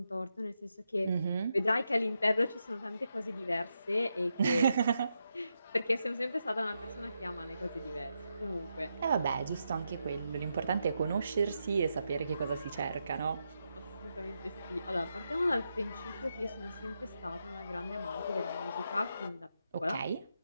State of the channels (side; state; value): both; inverted; correlation -0.85